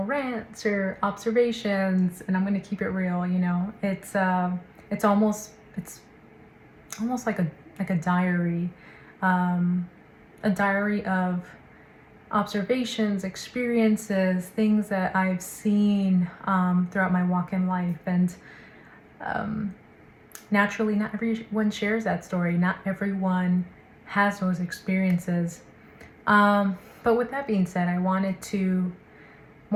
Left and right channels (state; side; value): identical; both; correlation 1.00